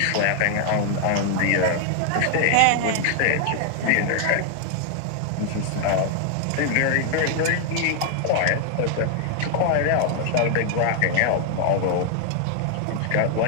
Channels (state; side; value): different; both; correlation 0.00